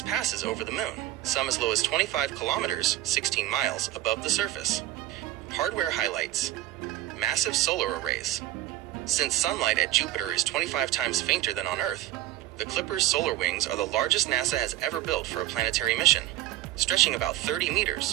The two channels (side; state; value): left; quieter; 14.7 dB